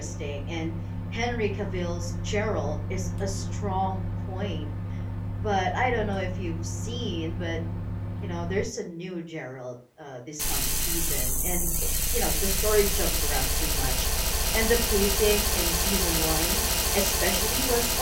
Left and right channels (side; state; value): both; identical; correlation 1.00